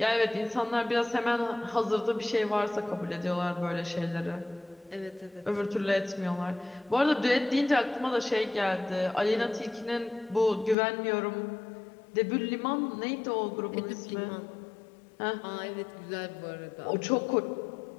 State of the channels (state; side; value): drops out; right; at 10.8 s